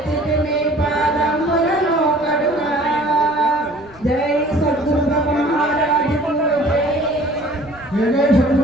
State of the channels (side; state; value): right; noise; rumble, 25 dB below the sound